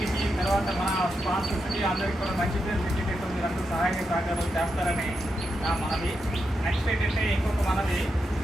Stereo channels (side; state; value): both; normal; correlation 0.85